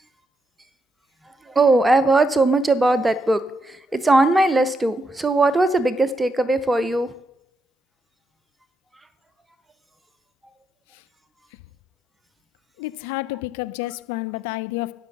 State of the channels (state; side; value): normal; both; correlation 0.80